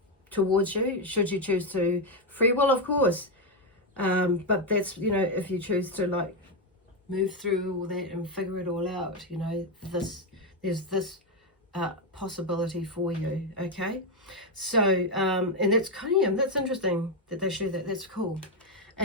towards you, should you choose to. Free will, of course, but that's, you know, if you choose to like move through all that and figure it all out, you know, there's this possibility for you. Okay, so and that's kind of, that's interesting that they show that. That's cool.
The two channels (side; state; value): both; normal; correlation 0.05